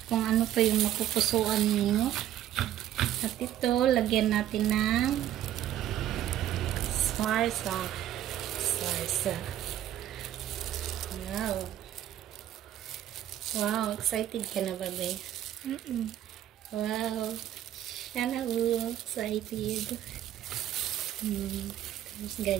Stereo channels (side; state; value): left; quieter; 12.0 dB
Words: Kung ano pa yung napupusuan nyo. At ito, lagyan natin ng sarsa. Sarsa. Wow. Wow, excited ka na ba, babe? Wow. Sana excited. Tapos